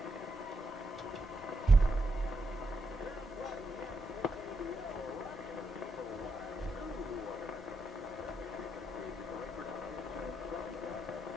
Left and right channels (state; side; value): normal; both; correlation 0.82